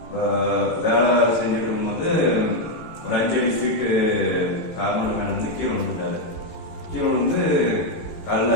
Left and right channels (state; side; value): late; right; 18 ms